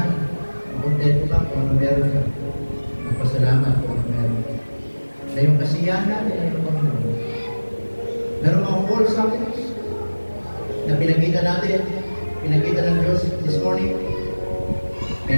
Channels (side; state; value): both; inverted; correlation -1.00